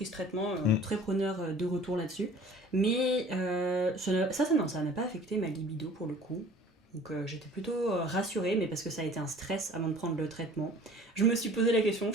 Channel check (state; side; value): normal; both; correlation 0.48